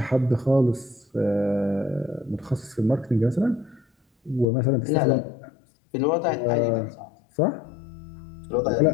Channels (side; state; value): right; drops out; at 4.5 s